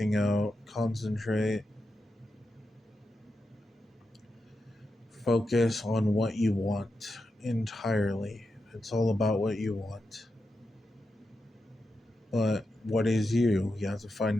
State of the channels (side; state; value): both; normal; correlation 0.88